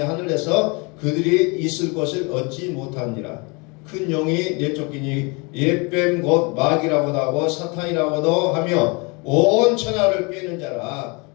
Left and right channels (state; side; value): quieter; right; 29.7 dB